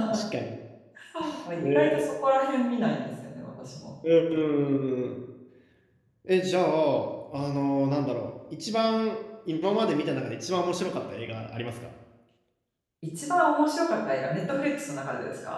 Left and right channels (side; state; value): both; identical; correlation 1.00